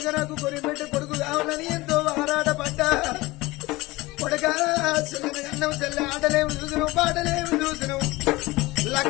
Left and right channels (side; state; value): right; quieter; 20.8 dB